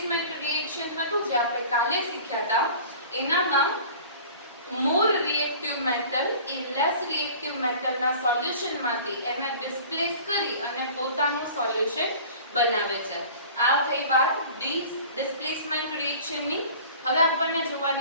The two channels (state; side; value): inverted; both; correlation -0.43